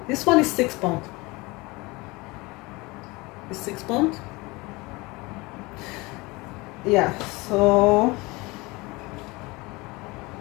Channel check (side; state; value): right; quieter; 23.7 dB